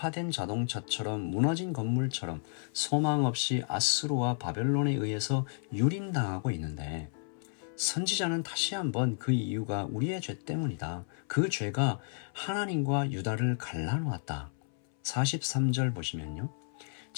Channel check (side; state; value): right; silent; 56 dB below the other